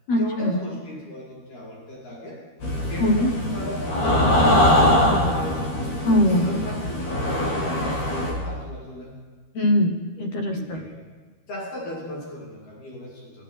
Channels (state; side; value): late; right; 13 ms